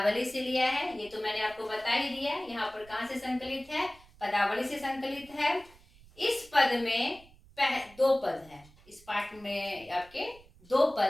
से लिया है। ये तो मैंने आपको बता ही दिया। यहाँ पर कहाँ से संकलित है? पदावली से संकलित है। इस पद में दो पद हैं। इस पाठ में आपके दो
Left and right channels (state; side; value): noise; right; rumble, 25 dB below the sound